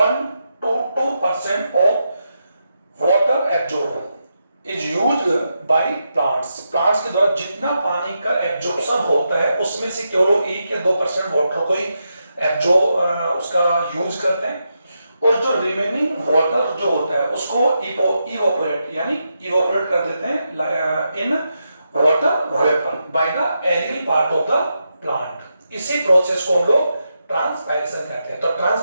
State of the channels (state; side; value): inverted; both; correlation -0.85